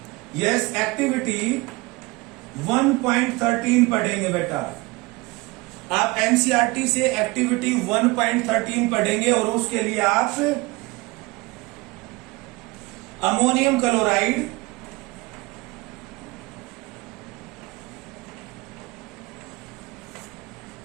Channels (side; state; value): left; quieter; 23.6 dB